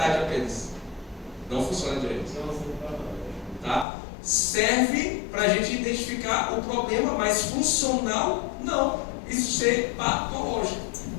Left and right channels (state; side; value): drops out; right; at 3.9 s